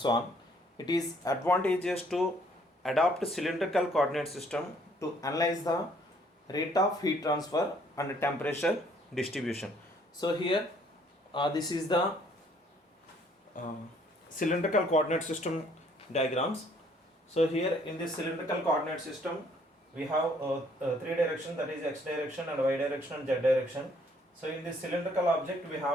on, it is advantageous to adopt cylindrical coordinate system to analyze the rate of heat transfer and temperature distribution. So here this is the cylindrical coordinate system diagrams. So here in this cylindrical coordinate system we have three direction, that is x direction and y direction and z direction. So in this cylindrical object we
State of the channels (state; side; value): normal; both; correlation 0.63